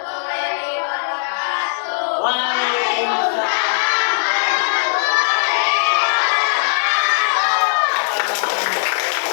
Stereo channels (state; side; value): silent; right; 63 dB below the other